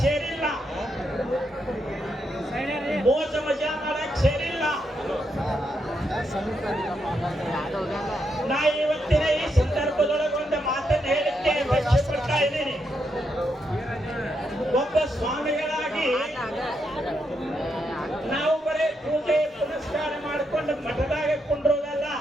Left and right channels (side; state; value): both; normal; correlation 0.81